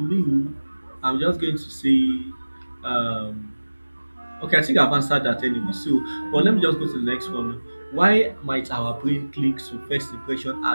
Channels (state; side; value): inverted; both; correlation -1.00